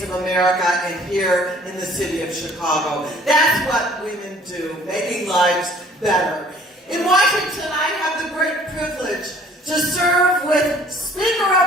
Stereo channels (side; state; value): both; normal; correlation 0.54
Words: of America and here in the city of Chicago. That's what women do, making lives better. In Washington, I have the great privilege to serve with Speaker